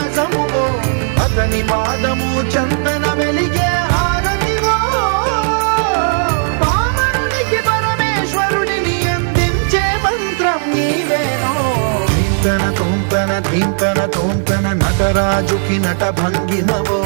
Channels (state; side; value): silent; left; digital silence